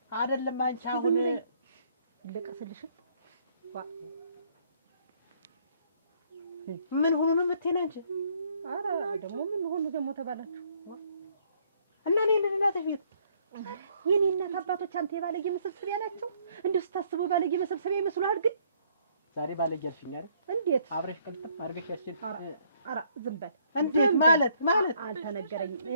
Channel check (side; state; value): both; inverted; correlation -0.65